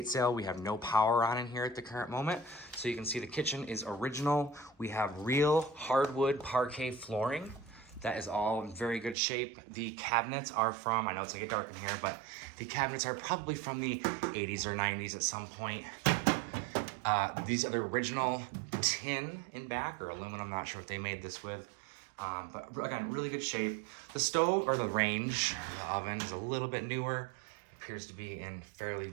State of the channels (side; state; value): left; drops out; at 9.2 s